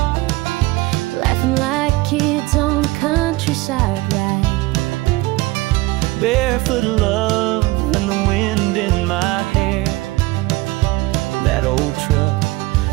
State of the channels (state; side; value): quieter; left; 20.4 dB